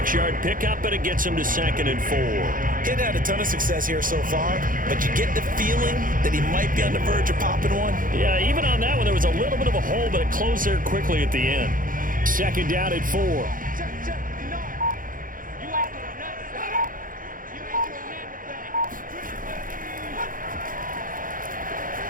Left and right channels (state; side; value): late; left; 0.40 ms